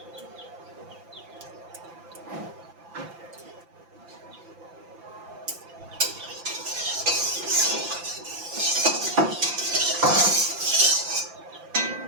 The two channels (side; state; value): left; late; 5.9 ms